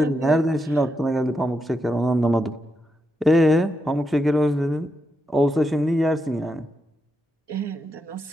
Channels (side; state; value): both; normal; correlation 0.85